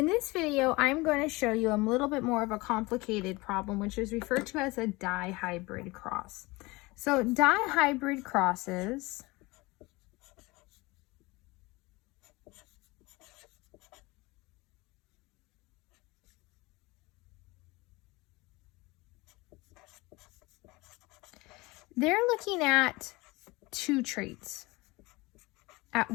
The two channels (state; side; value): quieter; right; 22.9 dB